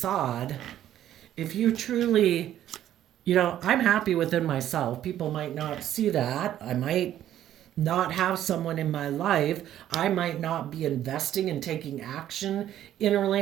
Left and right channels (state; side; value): quieter; left; 11.8 dB